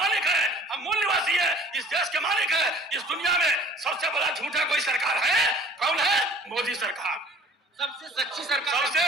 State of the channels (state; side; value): normal; both; correlation 0.49